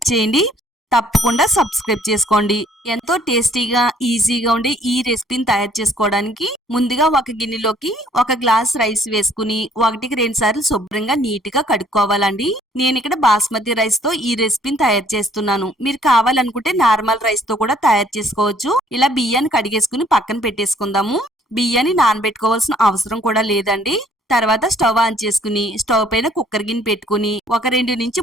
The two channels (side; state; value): both; normal; correlation 0.61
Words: చేయండి. తప్పకుండా సబ్స్క్రైబ్ చేసుకోండి. ఎంతో టేస్టీగా ఈజీగా ఉండే ఈ రెసిపీని తయారు చేసుకోవడానికి ముందుగా ఒక గిన్నెలోకి 1 గ్లాస్ రైస్ వేసుకుని 1కి 2 సార్లు శుభ్రంగా నీట్ గా కడుక్కోవాలండి. నేను ఇక్కడ బాస్మతి రైస్ తో ఈ రెసిపీని తయారు చేస్తున్నాను. మీరు కావాలనుకుంటే నార్మల్ రైస్ తో కూడా తయారు చేసుకోవచ్చు. ఇలా బియ్యాన్ని కడిగేసుకుని పక్కన పెట్టేసుకుందాము. బియ్యాన్ని నానబెట్టుకోవాల్సిన అవసరం కూడా లేదండి. తర్వాత స్టవ్ ఆన్ చేసుకుని స్టవ్ పైన కుక్కర్ గిన్నె పెట్టుకుని ఒక 2 నుంచి